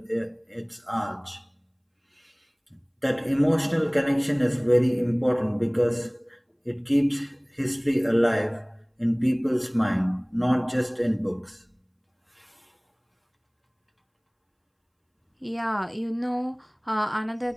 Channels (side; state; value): both; identical; correlation 1.00